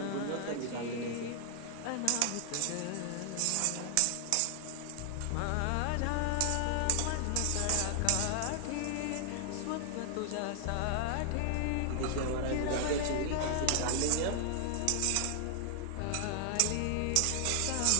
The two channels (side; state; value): both; different; correlation 0.00